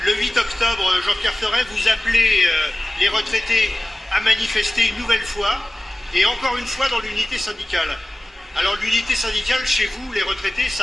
Le 8 octobre, Jean-Pierre Ferret, vous appelez les retraités à manifester une nouvelle fois, et encore une fois dans l'unité syndicale. Alors l'unité syndicale, chez vous, les retraités,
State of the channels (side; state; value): both; normal; correlation 0.97